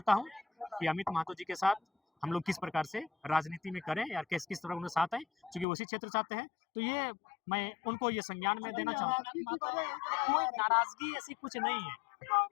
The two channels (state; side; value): drops out; right; at 5.7 s